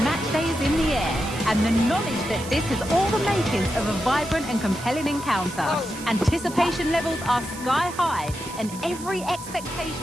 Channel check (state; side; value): noise; right; hiss, 14 dB below the sound